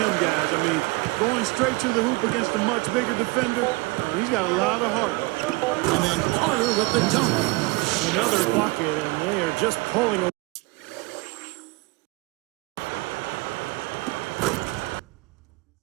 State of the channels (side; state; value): left; quieter; 24.8 dB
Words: guys. I mean, going straight to the hoop against a much bigger defender, he's got a lot of heart. And then Carter with the dunk. Another bucket, and they are just pulling away.